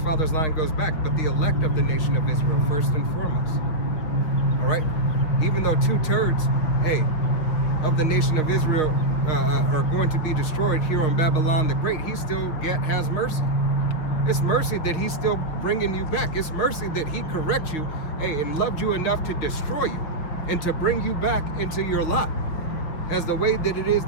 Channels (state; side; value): late; right; 6.3 ms